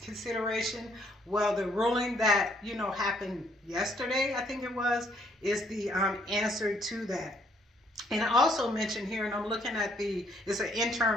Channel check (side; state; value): both; normal; correlation 0.68